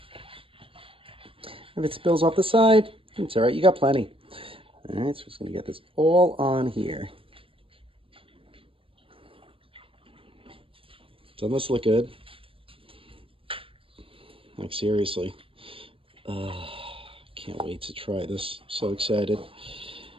If it spills off the side, it's all right. You got plenty. All right, so we're just going to get this all on here. Doesn't this look good? Like, seriously. Can't wait to try this. So excited.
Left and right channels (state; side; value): late; left; 0.26 ms